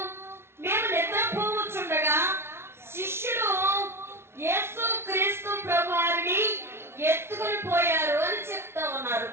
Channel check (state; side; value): late; left; 0.12 ms